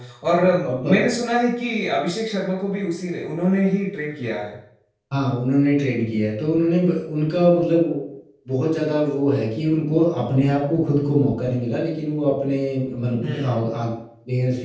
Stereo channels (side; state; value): both; identical; correlation 1.00